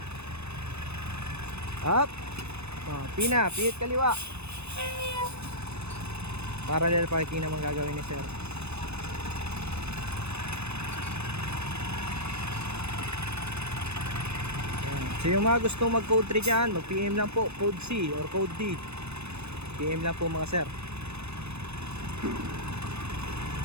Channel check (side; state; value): left; late; 0.80 ms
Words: Up. Pihit kaliwa. Parallel parking naman gagawin ni Sir. Ayan. So yung mga gustong mag code 3 dyan, mag PM lang po, code C or code D. PM lang po mga Sir.